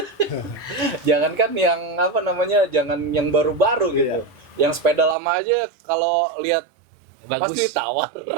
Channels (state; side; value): drops out; left; at 5.2 s